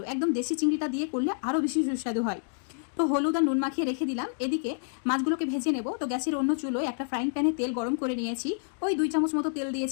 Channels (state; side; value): silent; right; digital silence